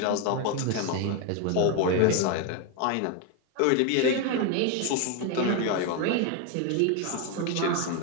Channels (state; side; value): different; both; correlation 0.02